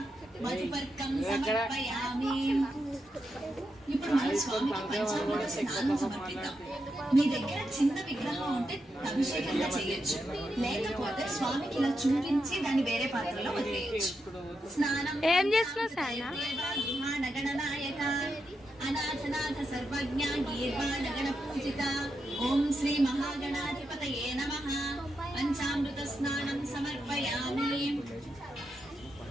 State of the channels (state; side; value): normal; both; correlation 0.85